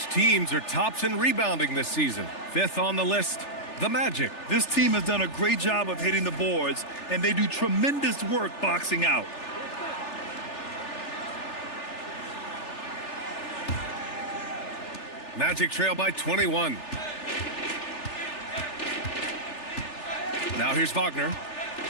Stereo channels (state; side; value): late; right; 3.4 ms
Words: teams are tops in rebounding this season. 5th on the list, the Magic. This team has done a great job of hitting the boards, and they do tremendous work boxing out. Magic trail by 21. Now here's Wagner.